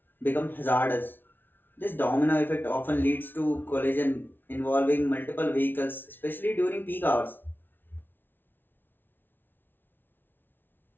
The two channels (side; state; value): right; late; 0.097 ms